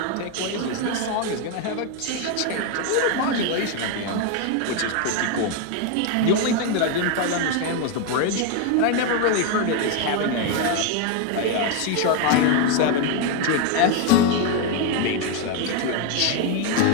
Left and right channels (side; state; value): both; different; correlation 0.01